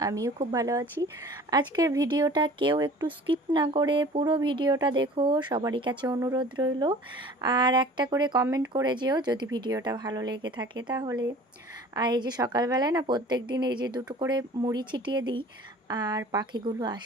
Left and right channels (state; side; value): normal; both; correlation 0.45